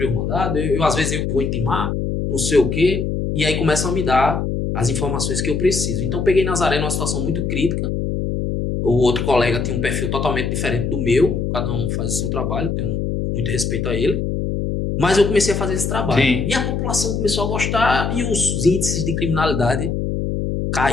o mandado, às vezes eu que vou intimar, não sei o quê, e aí começam a me dar as informações que eu preciso. Então, peguei Nazaré numa situação muito crítica. O outro colega tinha um perfil totalmente diferente do meu. Cada um faz o seu trabalho, tenho muito respeito a ele. Mas eu comecei a fazer esse trabalho. Sim. E a população começou a gostar e os índices de criminalidade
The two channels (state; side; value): noise; left; hum, 1 dB below the sound